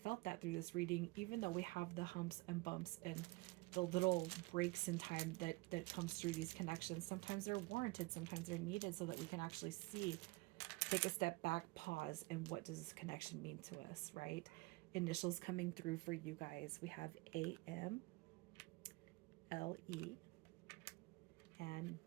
that through this reading, even though we have the humps and bumps and the little breaks in time that comes through these connections. Sometimes they're warranted, sometimes they're needed so that we can actually see, take a step back, pause, and what does this connection mean to us, right? Initials coming through for you guys. We have AM, LE, and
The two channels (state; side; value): quieter; left; 23.9 dB